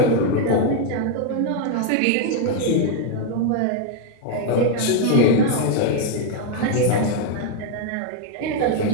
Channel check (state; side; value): different; both; correlation 0.01